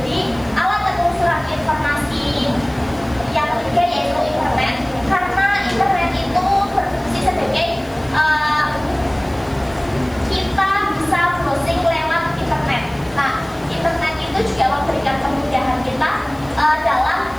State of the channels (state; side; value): noise; left; hiss, 25 dB below the sound